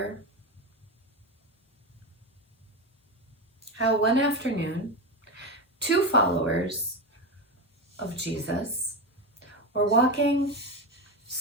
how one afternoon, two followers of Jesus were walking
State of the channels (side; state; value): both; normal; correlation 0.17